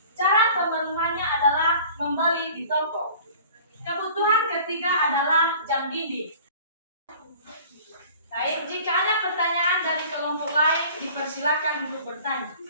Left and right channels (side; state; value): both; inverted; correlation -0.46